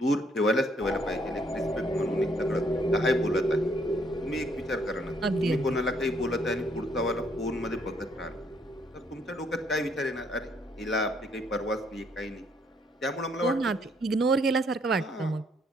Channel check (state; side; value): normal; both; correlation 0.68